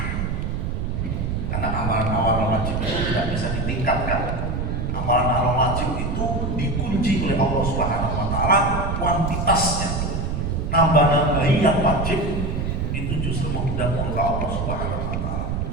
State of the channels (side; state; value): right; noise; rumble, 1 dB below the sound